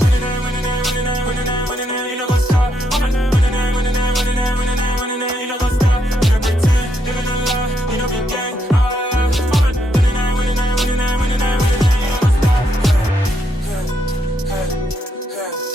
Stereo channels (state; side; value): normal; both; correlation 0.77